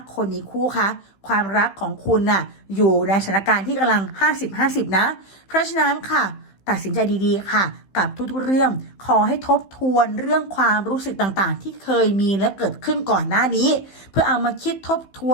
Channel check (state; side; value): late; right; 15 ms